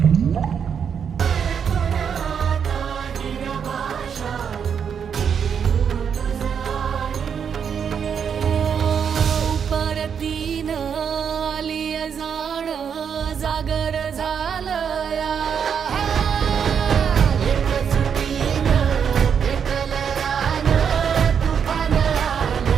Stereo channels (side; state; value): left; quieter; 7.3 dB